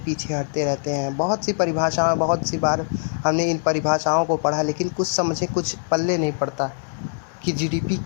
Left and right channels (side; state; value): right; silent; digital silence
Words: हटते रहते हैं। बहुत सी परिभाषाएं, बहुत सी बार हमने इन परिभाषाओं को पढ़ा, लेकिन कुछ समझे कुछ पल्ले नहीं पड़ता कि जीडीपी